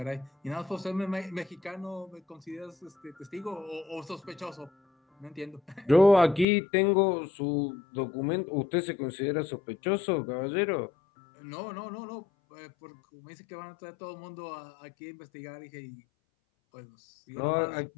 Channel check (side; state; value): right; drops out; at 6.5 s